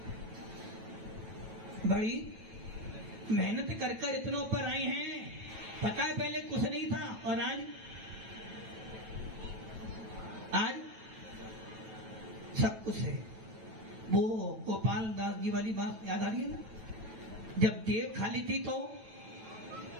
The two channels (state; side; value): late; left; 9.1 ms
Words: बड़ी मेहनत कर इतना ऊपर आए हैं। पता है पहले कुछ नहीं था और आज सब कुछ है। वो गोपाल दास जी वाली बात याद आ रही है ना, जब जेब खाली थी तो